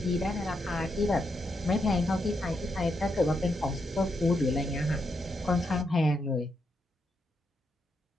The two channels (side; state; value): both; normal; correlation 0.81